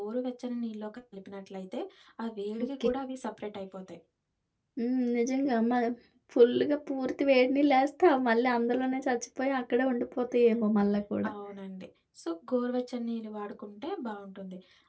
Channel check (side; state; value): both; identical; correlation 1.00